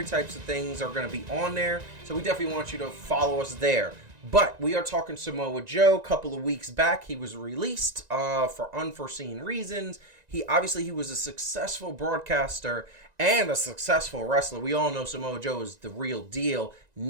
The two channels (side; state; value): left; late; 1.9 ms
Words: types of things are going to be on there. So we definitely want you to follow us there. But we are talking Samoa Joe. A couple of weeks back, he was released for unforeseen reasons. He was a successful broadcaster and a successful wrestler. We all know Samoa Joe is the real deal.